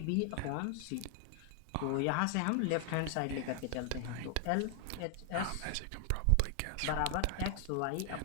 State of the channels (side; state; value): both; different; correlation 0.00